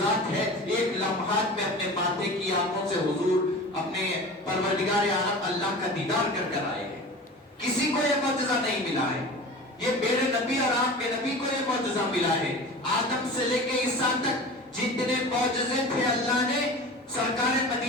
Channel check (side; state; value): both; normal; correlation 0.36